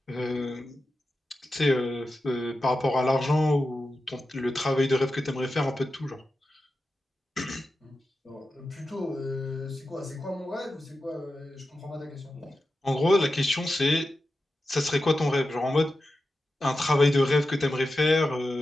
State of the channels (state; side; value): normal; both; correlation 0.91